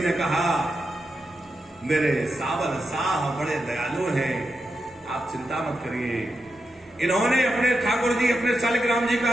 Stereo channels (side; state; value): both; normal; correlation 0.87